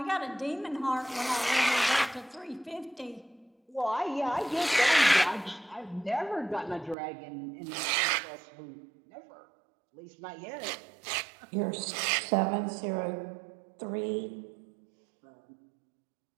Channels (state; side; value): drops out; left; at 7.0 s